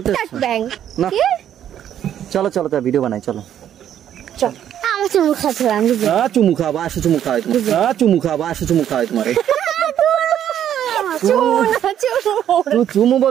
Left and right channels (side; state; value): left; quieter; 10.3 dB